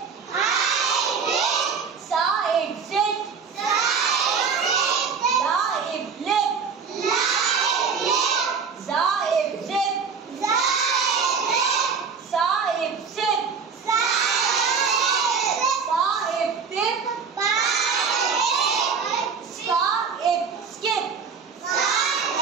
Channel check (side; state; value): left; quieter; 5.8 dB